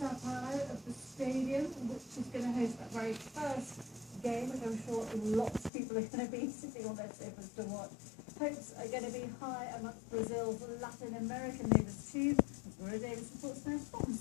Paulo of the stadium, which is going to host that very first game, which I'm sure lots of people are going to be sitting on their sofas to watch. Hopes are going to be high amongst Brazil's Latin American neighbours too. As Maria Davis reports now from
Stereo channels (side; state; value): right; drops out; at 5.7 s